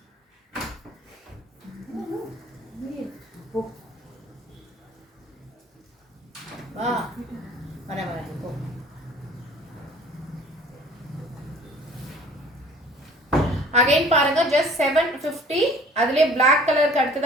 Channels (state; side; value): normal; both; correlation 0.50